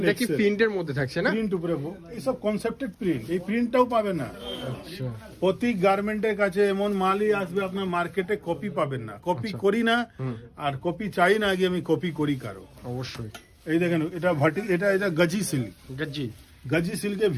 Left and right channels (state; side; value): identical; both; correlation 1.00